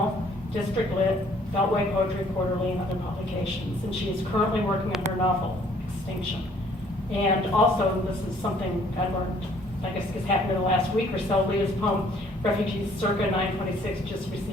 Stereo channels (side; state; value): both; normal; correlation 0.60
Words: District Lit, Beltway Poetry Quarterly, and other publications. And she is currently working on her novel, Extinction. And also, this is something I learned, I guess it's happened in the last week or so, Leah's poem, Refugees Circa 926, just